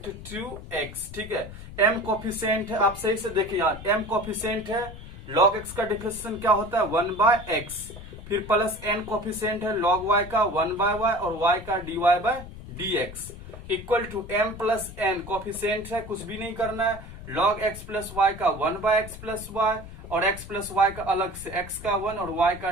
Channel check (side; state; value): left; noise; rumble, 14 dB below the sound